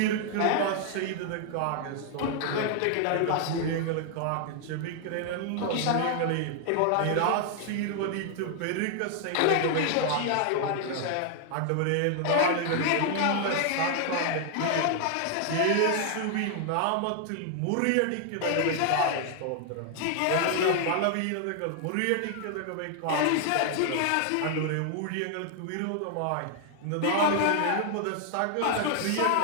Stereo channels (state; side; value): different; both; correlation 0.00